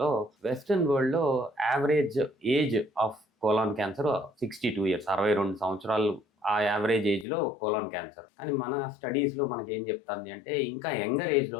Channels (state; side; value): drops out; right; at 7.2 s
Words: వెస్ట్రన్ వరల్డ్లో average age of colon cancer 62 years, 62 సంవత్సరాలు ఆ యావరేజ్ ఏజ్లో కోలాన్ క్యాన్సర్. కానీ మన స్టడీస్లో మనకి ఏం చెప్తుంది అంటే ఇంకా యంగర్